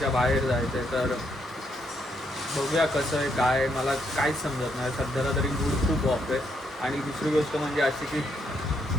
बाहेर जायचं आहे. तर बघूया कसं आहे काय. मला काहीच समजत नाही सध्याला तरी. मूड खूप ऑफ आहे. आणि दुसरी गोष्ट म्हणजे अशी की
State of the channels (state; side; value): normal; both; correlation 0.76